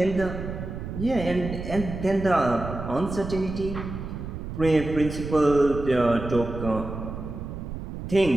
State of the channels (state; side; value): noise; right; rumble, 8 dB below the sound